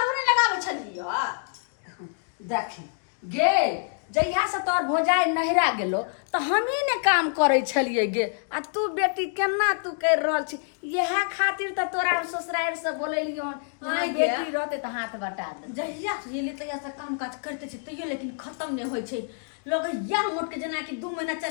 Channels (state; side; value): silent; right; digital silence